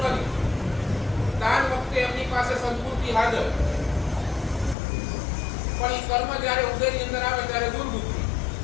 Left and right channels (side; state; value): right; drops out; at 4.8 s